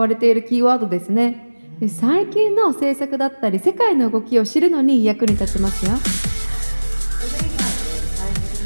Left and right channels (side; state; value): both; inverted; correlation -1.00